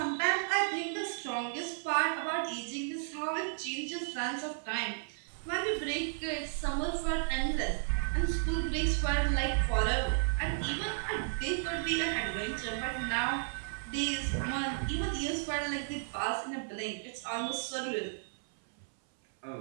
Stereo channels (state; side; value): silent; left; 55 dB below the other